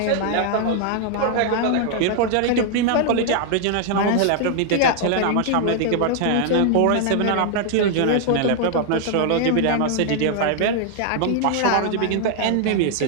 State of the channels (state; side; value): different; both; correlation 0.00